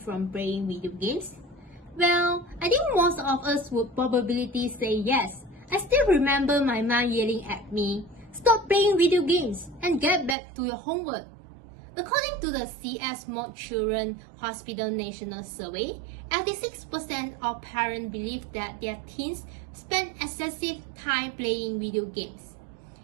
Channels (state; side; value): drops out; left; at 10.4 s